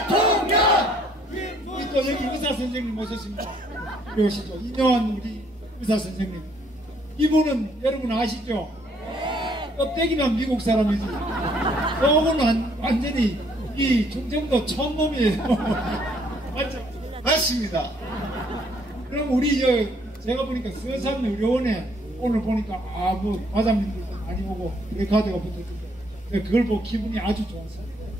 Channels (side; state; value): both; normal; correlation 0.65